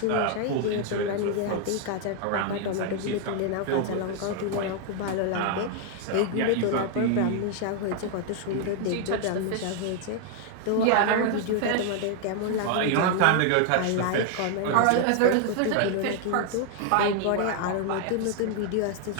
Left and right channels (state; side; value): different; both; correlation 0.00